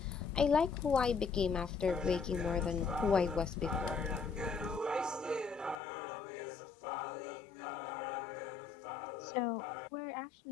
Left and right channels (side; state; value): right; drops out; at 5.8 s